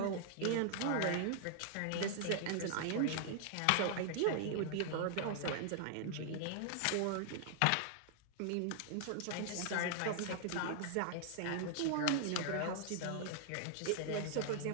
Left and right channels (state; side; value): different; both; correlation -0.01